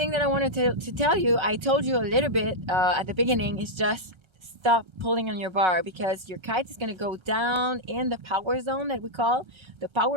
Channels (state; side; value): late; left; 1.3 ms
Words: that I wanted to tell you, I told you a little bit at the beginning, is just stop pulling on your bar, because your kite is going to go down in the power zone that we call. The